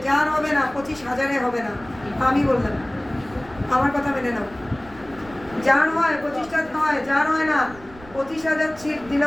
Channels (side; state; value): right; noise; rumble, 21 dB below the sound